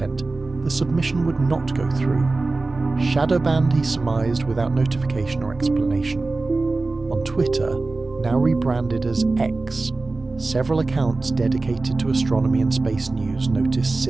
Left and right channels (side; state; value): left; quieter; 3.4 dB